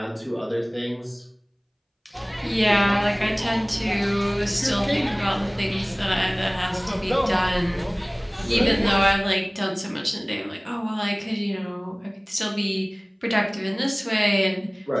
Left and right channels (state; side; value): identical; both; correlation 1.00